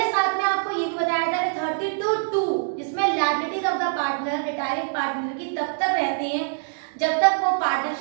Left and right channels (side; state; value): left; silent; digital silence